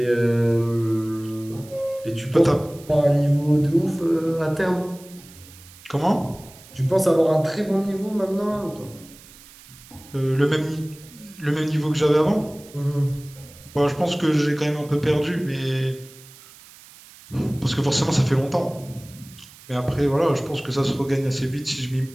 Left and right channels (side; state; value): right; noise; hiss, 22 dB below the sound